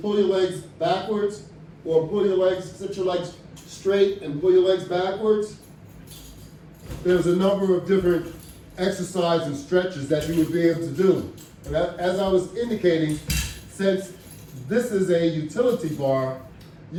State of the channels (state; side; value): identical; both; correlation 1.00